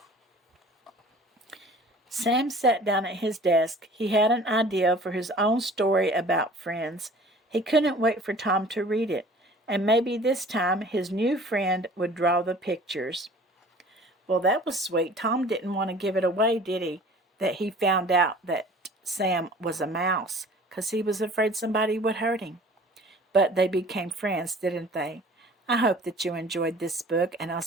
Sam sat down at his desk. He had an idea for his own story about friends. He couldn't wait for Tom to read it, and maybe this time his new friend would draw the pictures. Well, that was sweet. Tom didn't want to give it away, did he? That he found out that Sam was a mouse, 'cause he was afraid somebody would hurt him. But they became friends, didn't they? I hope that you enjoyed this book, and I'll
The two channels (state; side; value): normal; both; correlation 0.47